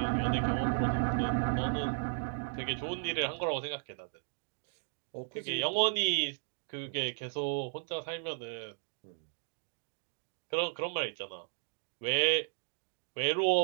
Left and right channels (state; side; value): silent; left; digital silence